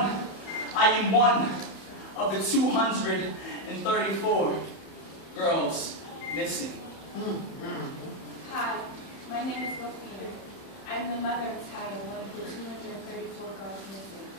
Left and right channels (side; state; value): right; late; 31 ms